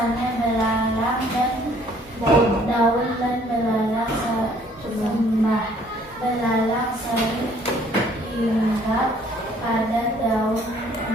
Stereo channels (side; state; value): both; normal; correlation 0.60